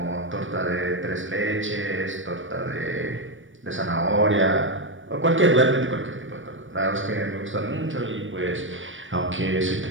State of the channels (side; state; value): left; late; 0.56 ms